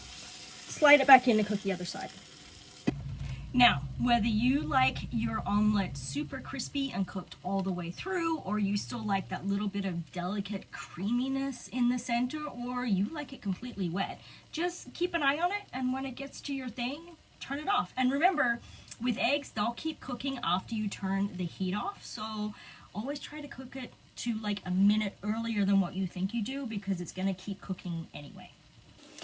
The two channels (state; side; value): identical; both; correlation 1.00